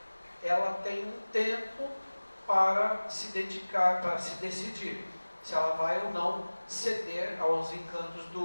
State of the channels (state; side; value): inverted; both; correlation -1.00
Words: ela tem um tempo para se dedicar, para se decidir se ela vai ou não ceder aos encantos